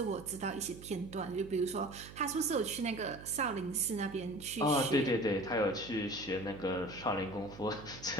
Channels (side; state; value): right; noise; hum, 15 dB below the sound